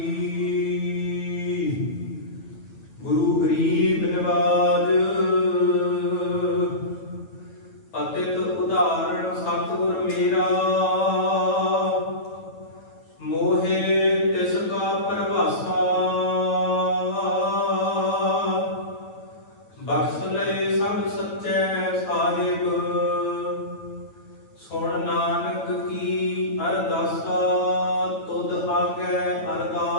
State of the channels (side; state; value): right; late; 9.1 ms